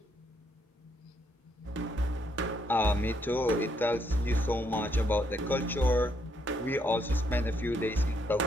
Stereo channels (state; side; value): normal; both; correlation 0.73